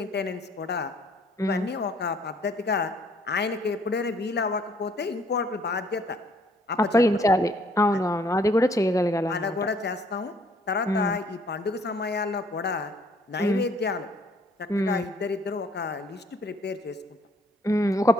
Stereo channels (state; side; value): normal; both; correlation 0.62